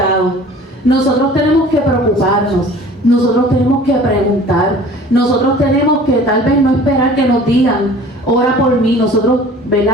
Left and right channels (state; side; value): normal; both; correlation 0.46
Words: Nosotros tenemos que preocuparnos, nosotros tenemos que preguntar, nosotros tenemos que tal vez no esperar que nos digan, ora por mí. Nosotros,